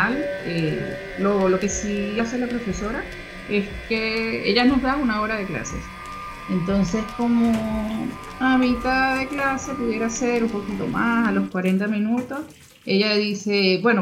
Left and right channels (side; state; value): both; identical; correlation 1.00